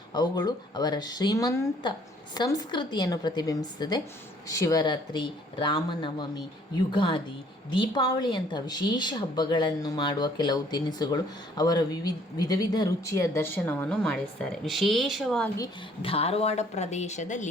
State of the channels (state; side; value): normal; both; correlation 0.60